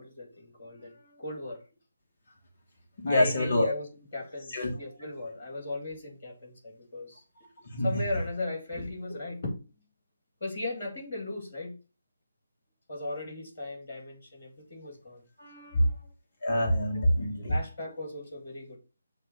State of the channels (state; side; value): inverted; both; correlation -0.88